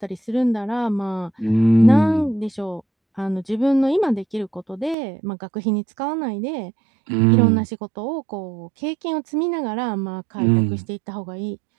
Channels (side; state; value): left; drops out; at 5.0 s